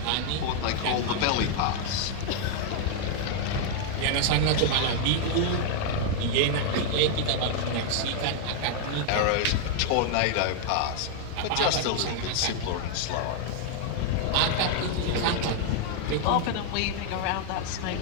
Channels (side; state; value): both; different; correlation 0.00